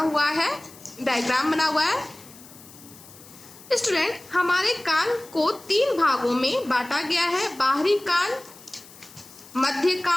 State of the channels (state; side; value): noise; left; hiss, 21 dB below the sound